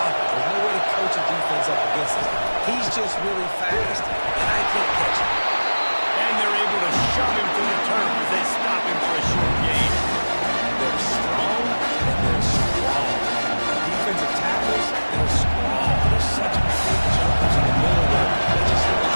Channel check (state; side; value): inverted; both; correlation -1.00